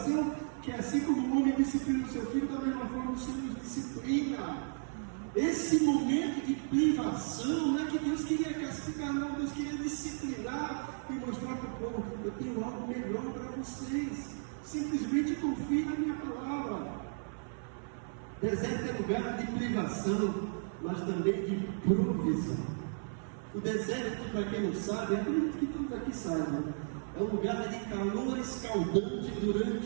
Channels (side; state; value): left; silent; 55 dB below the other